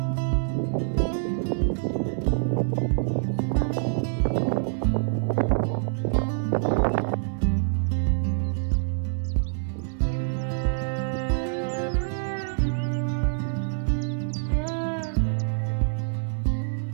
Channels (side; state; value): left; silent; 61 dB below the other